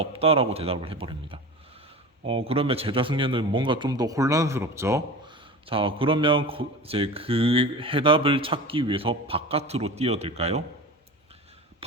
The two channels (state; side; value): normal; both; correlation 0.32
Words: 대답을 해버립니다. 그러면 제자 승려는 뭔가 좀 더 혼란스럽죠. 자, 그러면 이제 그 해답을 찾기 위해서 바깥으로 뛰어들까요?